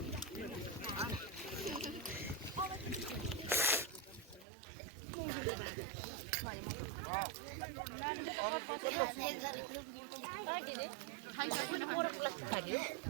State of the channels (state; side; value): drops out; left; at 4.5 s